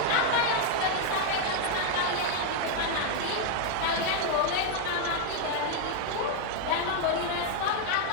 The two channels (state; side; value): different; both; correlation 0.00